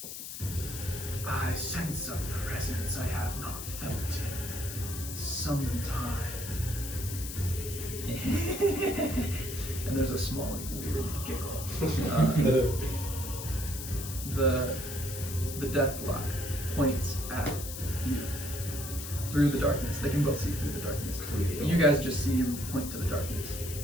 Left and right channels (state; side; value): noise; left; hiss, 8 dB below the sound